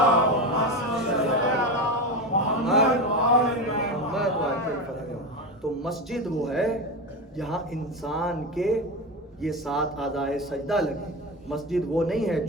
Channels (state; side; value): normal; both; correlation 0.20